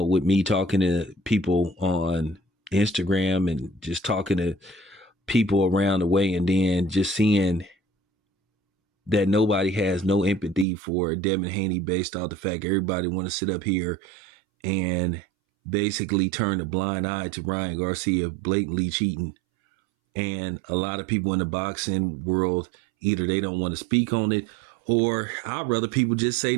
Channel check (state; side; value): drops out; left; at 10.7 s